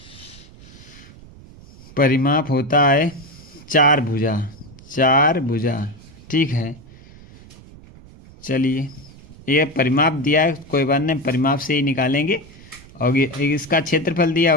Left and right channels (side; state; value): right; noise; rumble, 21 dB below the sound